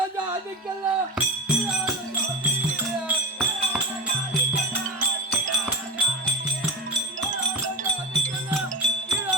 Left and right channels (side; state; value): both; normal; correlation 0.24